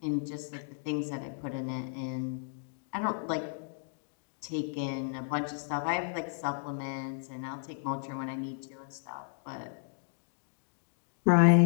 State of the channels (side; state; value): right; silent; digital silence